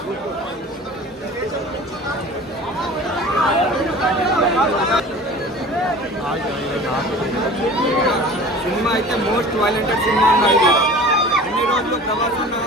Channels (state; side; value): normal; both; correlation 0.41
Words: సినిమా అయితే మోస్ట్ వైలెంటెడ్ సినిమా అన్నది. అన్ని రోజులు ప్రభాస్